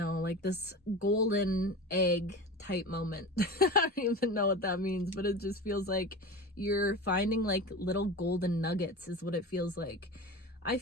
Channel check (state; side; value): normal; both; correlation 0.30